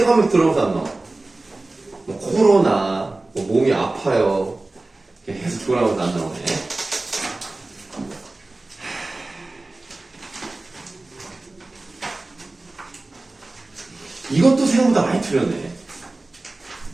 하면서 들어오면서 안 나와. 뭐 코로나, 뭐 몸이 아파요. 계속 돌아오면서 안 나오네. 이것도 생각보다 많이 틀렸네.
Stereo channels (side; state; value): left; quieter; 3.0 dB